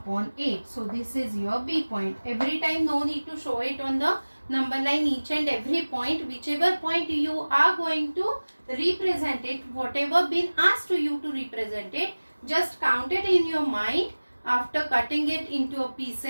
8. So this is your B point. Every time no need to show it on the number line, each and every point, whichever point you are going to represent it, whatever been asked to you to represent it, just count it in your mind after cutting it into a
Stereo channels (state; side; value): inverted; both; correlation -1.00